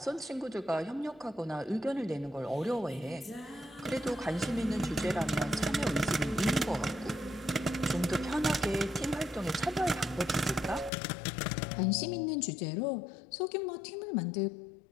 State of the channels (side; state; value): right; drops out; at 10.9 s